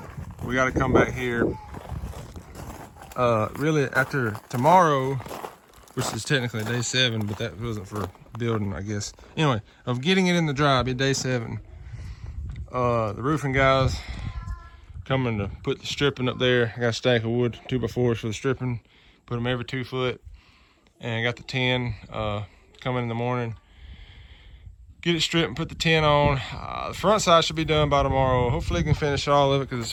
we got to come back here really after tomorrow, which is technically day 7, but that wasn't for building, I guess. Anyway, of getting it in the dry, be day 7. The roofing guys coming to put the stripping up there. I got a stack of wood, 2x4s for the stripping. Put them every 2 foot. And I got the tin coming in the morning. Get it stripped and put the tin on. The front side should be done by tomorrow. Hopefully, I can finish all of it because it's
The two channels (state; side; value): identical; both; correlation 1.00